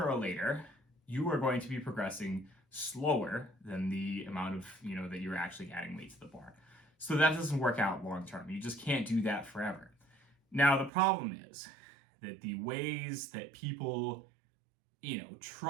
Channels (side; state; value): left; drops out; at 10.9 s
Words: or later, you are going to be progressing slower than the amount of, that you're actually adding weight to the bar. So that doesn't work out long term. You just can't do that forever. Now, the problem is that the ways that people,